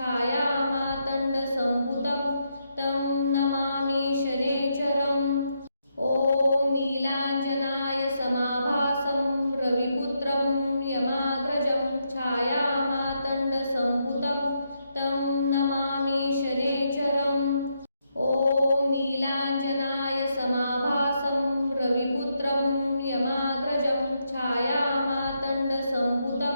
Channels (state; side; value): inverted; both; correlation -0.80